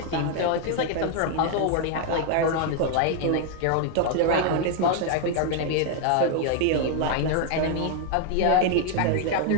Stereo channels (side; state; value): both; different; correlation 0.00